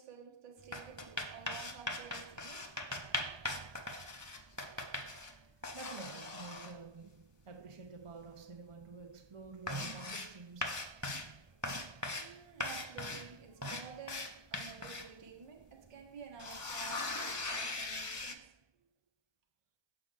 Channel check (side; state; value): left; late; 1.2 ms